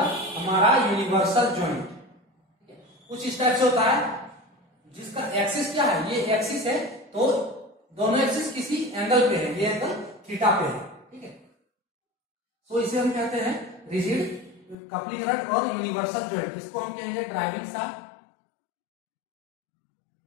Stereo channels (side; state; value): right; drops out; at 14.8 s